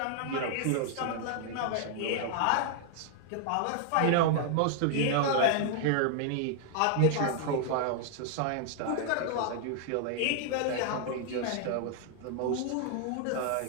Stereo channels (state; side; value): different; both; correlation 0.00